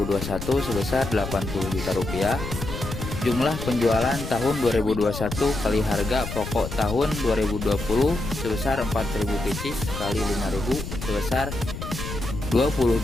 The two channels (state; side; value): noise; left; rumble, 7 dB below the sound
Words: sebesar Rp80 juta. Jumlah penjualan tahun 2021 kali harga pokok tahun 2020 sebesar 4.000 pieces kali 5.000 sebesar Rp20